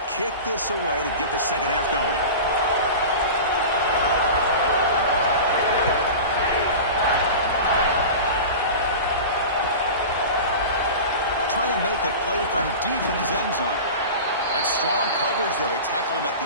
kick this away to get the 2nd half going. Trying to make a play from deep in his end zone. That's strong coverage, though. They tackle him at the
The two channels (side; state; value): both; inverted; correlation -0.32